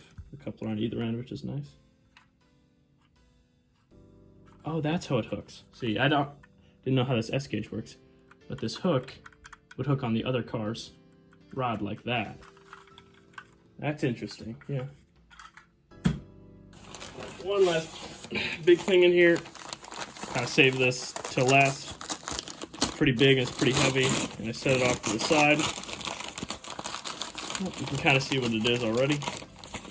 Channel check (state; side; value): identical; both; correlation 1.00